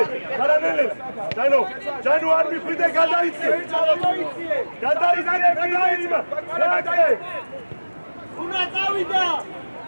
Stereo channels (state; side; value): inverted; both; correlation -1.00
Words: ხარა, ნელელა. ჯანო არ მიხვიდე, გადაიწე. Უნდა წავიდა.